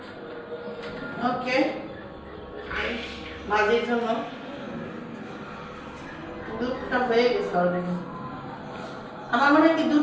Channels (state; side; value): identical; both; correlation 1.00